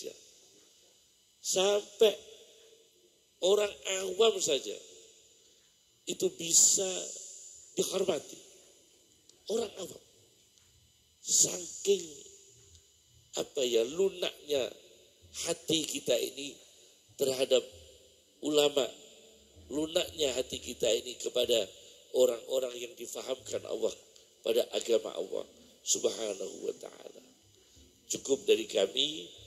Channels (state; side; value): identical; both; correlation 1.00